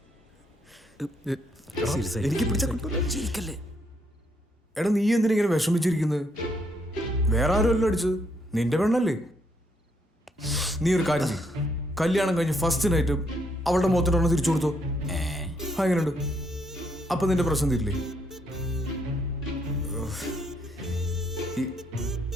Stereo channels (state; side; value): normal; both; correlation 0.73